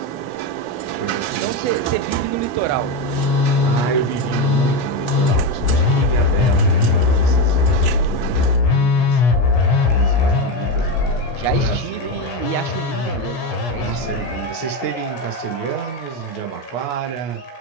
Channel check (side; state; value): right; late; 17 ms